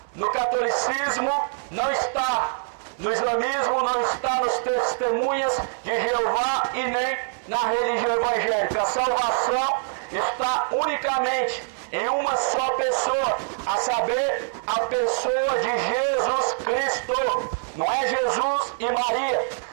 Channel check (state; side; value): silent; left; digital silence